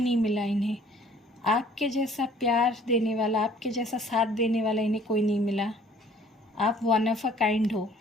मिला इन्हें। आपके जैसा प्यार देने वाला, आपके जैसा साथ देने वाला इन्हें कोई नहीं मिला। आप वन ऑफ अ काइंड हो,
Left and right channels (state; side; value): normal; both; correlation 0.55